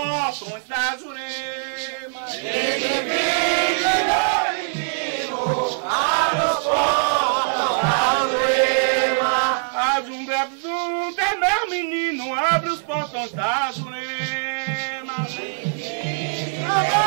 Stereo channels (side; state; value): left; silent; digital silence